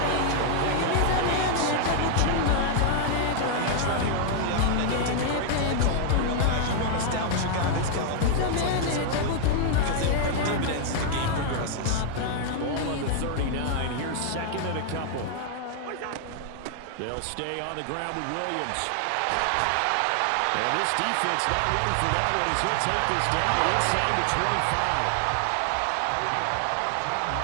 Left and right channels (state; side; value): different; both; correlation 0.00